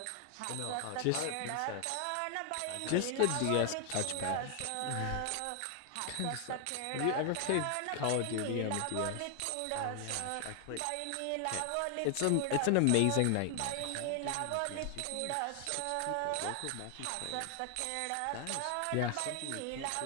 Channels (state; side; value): different; both; correlation 0.00